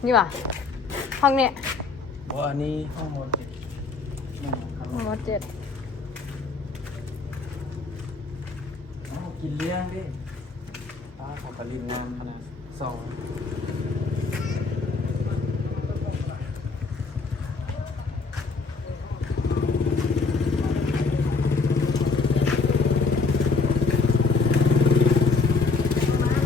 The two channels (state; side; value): quieter; right; 4.4 dB